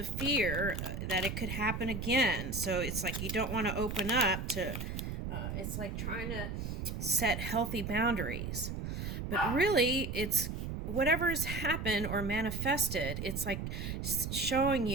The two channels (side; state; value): right; noise; rumble, 4 dB below the sound